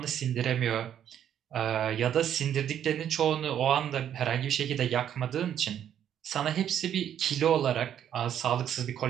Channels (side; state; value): left; quieter; 9.9 dB